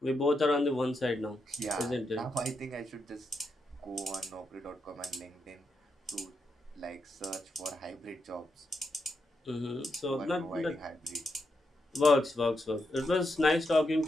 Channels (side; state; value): both; normal; correlation 0.83